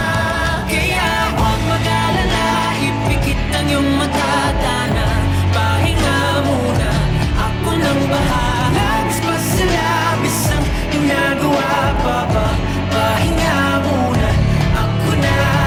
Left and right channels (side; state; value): both; identical; correlation 1.00